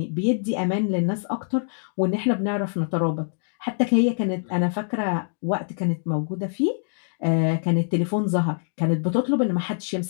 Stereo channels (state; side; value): silent; right; digital silence